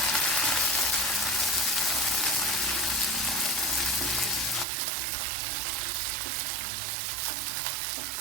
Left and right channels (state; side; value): drops out; left; at 4.7 s